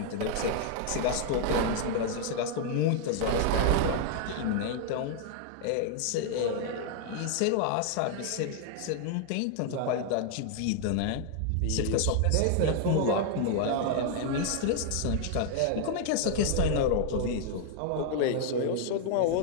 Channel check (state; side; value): different; both; correlation 0.00